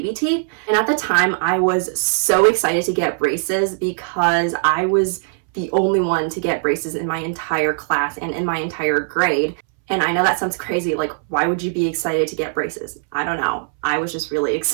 teeth. And at the time, I was so excited to get braces because I was the only one to get braces in my entire class and in my entire grade. And I know that sounds crazy, like, why would you be excited to get braces? I don't know. I was just really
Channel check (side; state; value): left; silent; 63 dB below the other